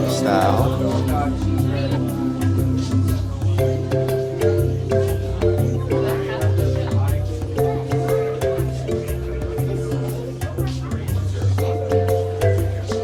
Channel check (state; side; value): identical; both; correlation 1.00